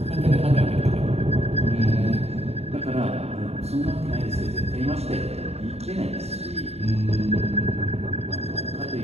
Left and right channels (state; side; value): late; left; 0.30 ms